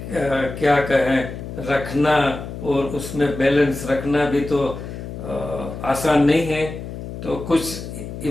क्या कहें रखना और उसमें बैलेंस रखना भी तो आसान नहीं है। तो कुछ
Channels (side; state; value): left; noise; hum, 9 dB below the sound